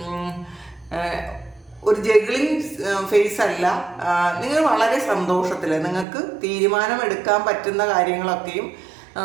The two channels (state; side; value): drops out; left; at 6.1 s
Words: ഒരു ജഗ്ലിംഗ് ഫേസ് അല്ല. നിങ്ങൾ വളരെ സന്തോഷത്തിൽ നിങ്ങൾക്ക് തീരുമാനമെടുക്കാൻ പറ്റുന്ന കാര്യങ്ങളൊക്കെയും